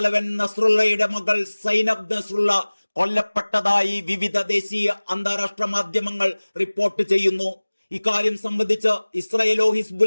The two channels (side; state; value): both; inverted; correlation -1.00